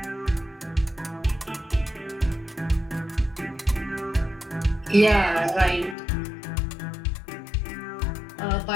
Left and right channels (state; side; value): drops out; right; at 6.0 s